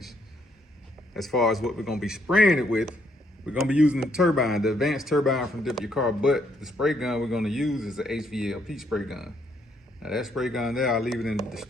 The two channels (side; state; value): both; normal; correlation 0.72